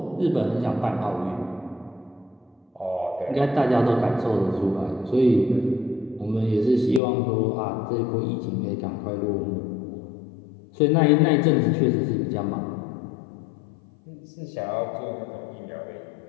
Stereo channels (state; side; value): drops out; right; at 7.0 s